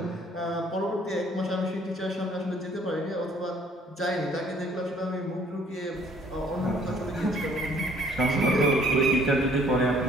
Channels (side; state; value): both; normal; correlation 0.60